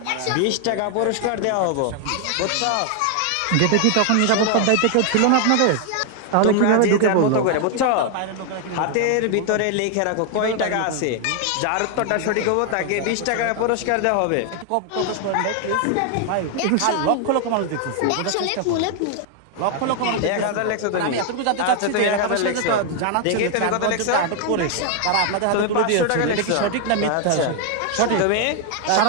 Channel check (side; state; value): both; different; correlation 0.00